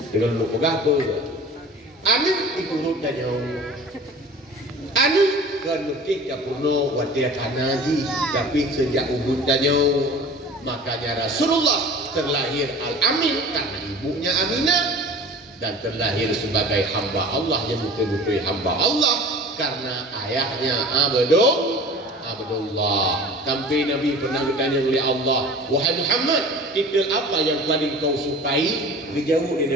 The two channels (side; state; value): both; normal; correlation 0.41